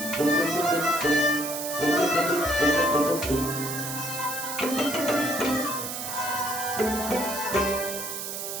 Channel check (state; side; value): noise; right; hiss, 6 dB below the sound